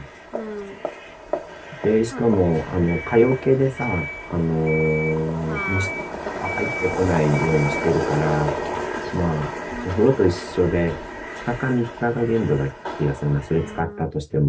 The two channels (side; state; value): both; identical; correlation 1.00